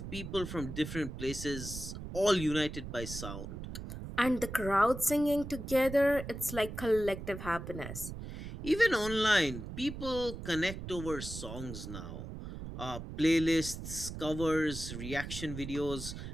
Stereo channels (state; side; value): noise; right; rumble, 9 dB below the sound